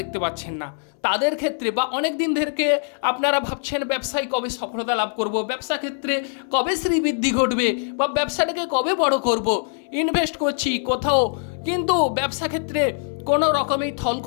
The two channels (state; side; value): silent; right; 60 dB below the other